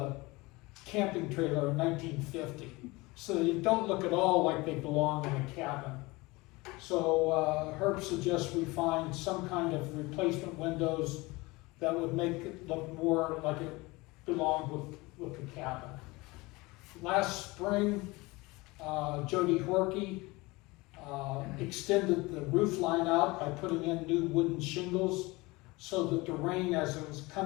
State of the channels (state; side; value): quieter; right; 23.0 dB